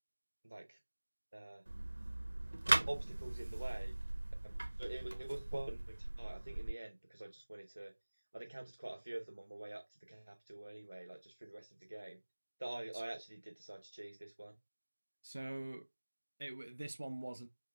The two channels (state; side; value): inverted; both; correlation -1.00